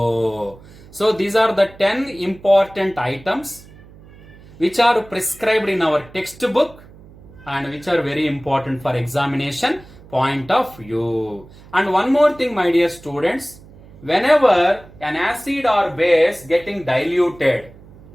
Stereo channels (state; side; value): noise; right; hum, 22 dB below the sound